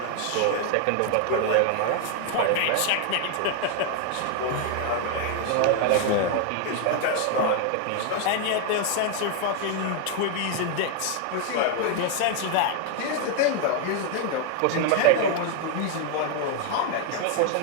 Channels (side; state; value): both; different; correlation 0.00